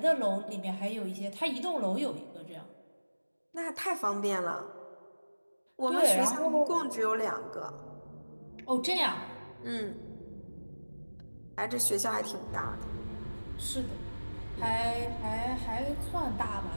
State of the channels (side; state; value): both; inverted; correlation -1.00